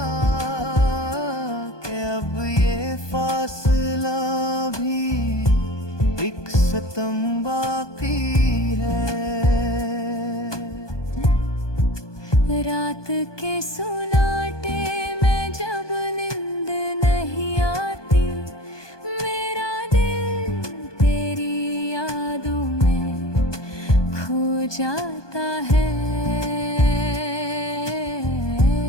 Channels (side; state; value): right; late; 1.2 ms